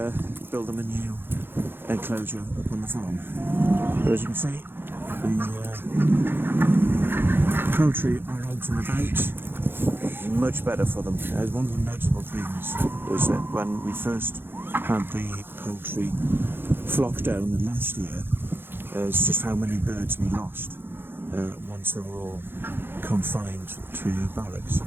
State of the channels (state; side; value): late; left; 0.10 ms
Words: build them a new enclosure up on the farm. But as you can see, the poultry are out and about, much better for them. One of the notable things was that when we first had the poultry flockdown last year, it's just how many birds we lost once they were all confined to barracks.